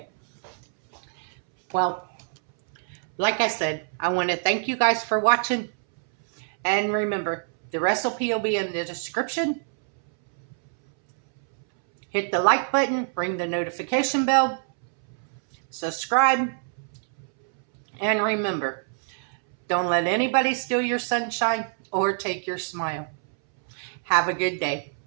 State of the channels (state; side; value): silent; left; 61 dB below the other